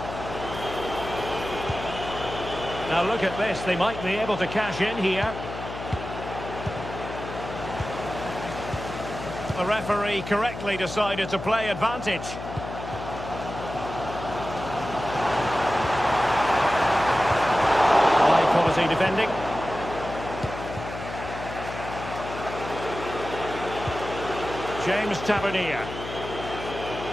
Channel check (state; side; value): noise; left; hum, 9 dB below the sound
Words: Now look at this, they might be able to cash in here. The referee correctly decided to play advantage. High quality defending. James Tavernier.